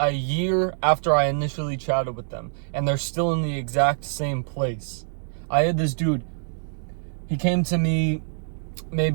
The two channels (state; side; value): silent; left; 62 dB below the other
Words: year after I initially chatted with them, and they're still in the exact same place. I had this dude, he came to me